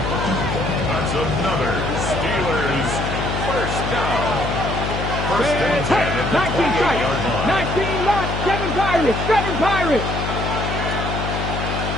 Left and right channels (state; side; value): noise; left; hum, 3 dB below the sound